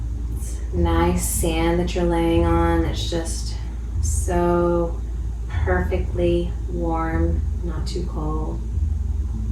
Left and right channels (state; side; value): identical; both; correlation 1.00